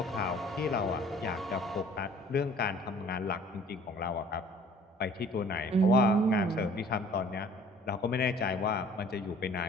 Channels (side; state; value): both; normal; correlation 0.52